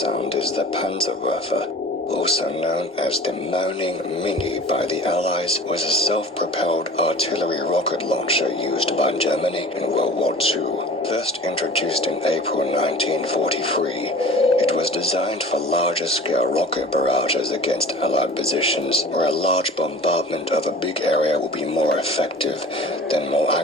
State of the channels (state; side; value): normal; both; correlation 0.43